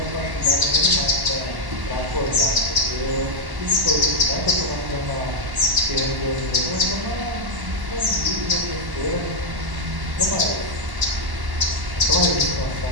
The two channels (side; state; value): left; late; 1.1 ms